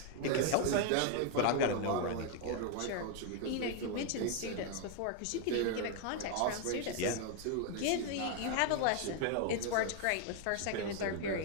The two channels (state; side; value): different; both; correlation 0.00